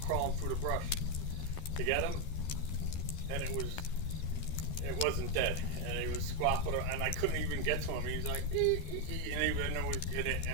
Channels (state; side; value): late; right; 13 ms